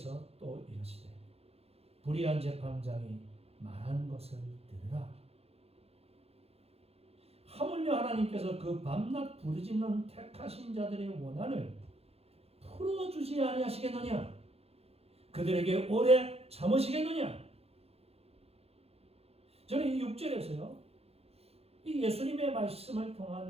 또 이르시되 불의한 재판장이 말한 것을 들으라. 하물며 하나님께서 그 밤낮 부르짖는 택하신 자들의 원한을 풀어주지 아니하시겠느냐? 그들에게 오래 참으시겠느냐? 저는 이 6절에서요, 이 예수님의 말씀을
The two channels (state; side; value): late; left; 0.29 ms